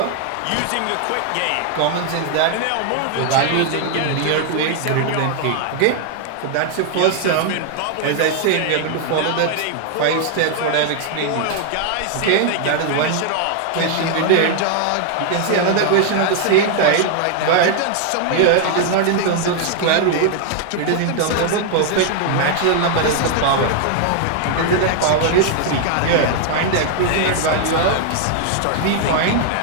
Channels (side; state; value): both; different; correlation 0.00